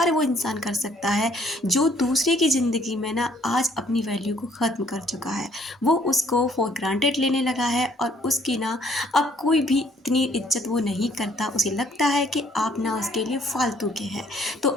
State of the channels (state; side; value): normal; both; correlation 0.63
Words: वो इंसान कर सकता है जो दूसरे की ज़िंदगी में ना आज अपनी वैल्यू को ख़त्म कर चुका है। वो उसको फॉर ग्रांटेड लेने लगा है और उसकी ना अब कोई भी इतनी इज्जत वो नहीं करता। उसे लगता है कि आप ना उसके लिए फालतू के हैं। तो